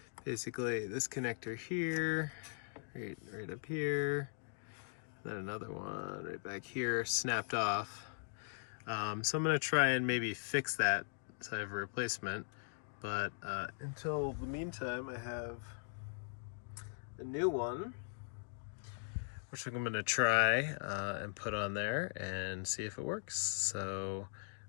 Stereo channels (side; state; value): right; silent; digital silence